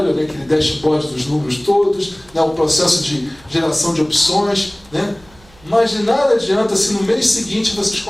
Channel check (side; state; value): right; noise; hum, 27 dB below the sound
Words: né, aquele dashboard dos números todos, né, o processo de geração de opções, né, mas de nada adianta se no mês seguinte vocês